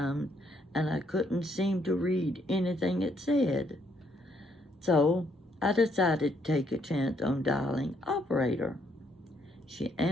and I couldn't seem to read anything it said. So I decided to take a chance on dialing operator. She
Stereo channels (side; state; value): both; normal; correlation 0.71